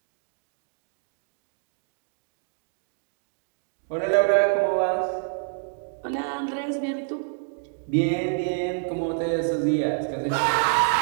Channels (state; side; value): silent; left; digital silence